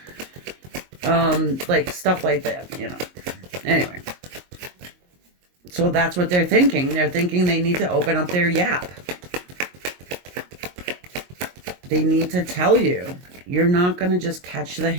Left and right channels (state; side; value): late; left; 22 ms